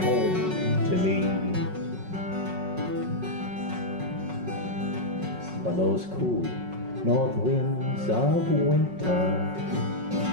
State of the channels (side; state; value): left; late; 5.4 ms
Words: home to me. When those cool north winds of winter